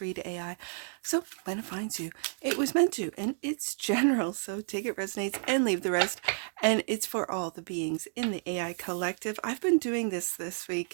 AI. So when it finds you, it was meant to, and it's general. So take it resonates and leave the rest. And it's for all the beings in the AI collective. I've been doing this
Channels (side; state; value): left; silent; 57 dB below the other